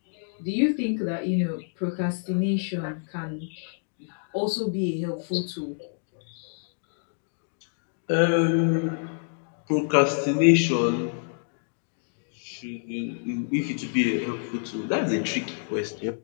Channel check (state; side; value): silent; right; digital silence